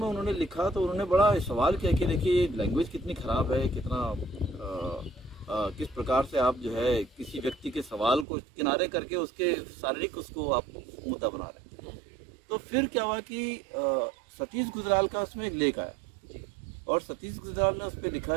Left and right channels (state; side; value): drops out; left; at 8.2 s